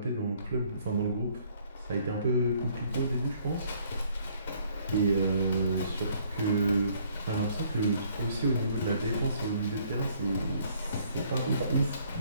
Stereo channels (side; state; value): both; inverted; correlation -0.63